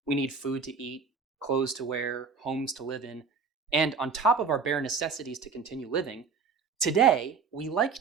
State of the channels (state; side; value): quieter; left; 5.2 dB